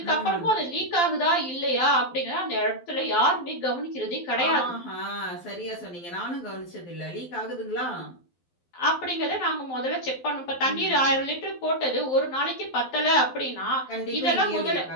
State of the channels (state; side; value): late; right; 12 ms